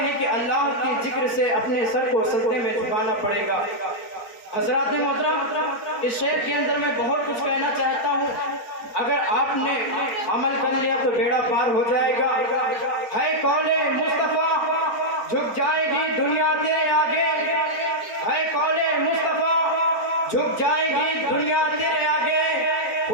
کہ اللہ کے ذکر سے اپنے سر کو سجدے میں جھکانا پڑے گا۔ حضرات محترم، اس شعر کے اندر میں بہت کچھ کہنا چاہتا ہوں، اگر آپ نے عمل کر لیا تو بیڑا پار ہو جائے گا۔ ہے قول مصطفیٰ جھک جائے گی دنیا تیرے آگے، ہے قول مصطفیٰ جھک جائے گی دنیا تیرے آگے،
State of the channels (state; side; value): late; right; 4.7 ms